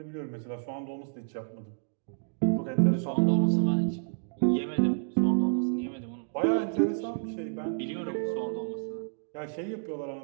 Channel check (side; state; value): left; silent; digital silence